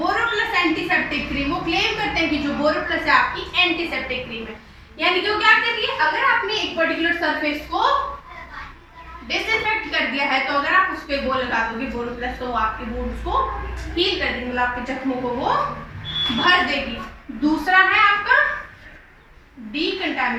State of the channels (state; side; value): identical; both; correlation 1.00